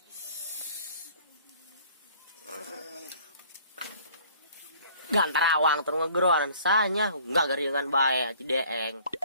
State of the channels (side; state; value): both; inverted; correlation -0.54